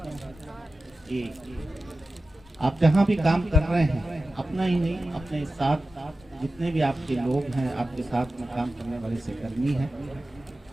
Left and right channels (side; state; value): both; normal; correlation 0.94